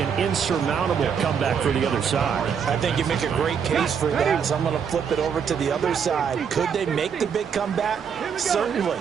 insurmountable comeback for the other side. I think you make a great case for that, so I'm going to flip it over to the other side. Could they make the big comeback? Certainly.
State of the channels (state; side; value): quieter; left; 7.1 dB